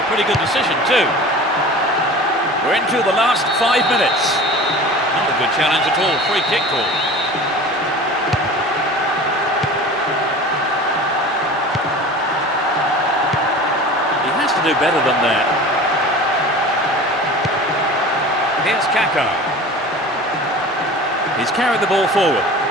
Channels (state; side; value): normal; both; correlation 0.38